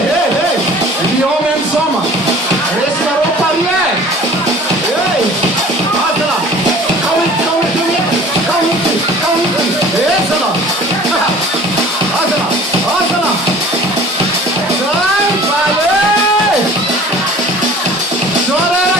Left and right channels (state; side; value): normal; both; correlation 0.46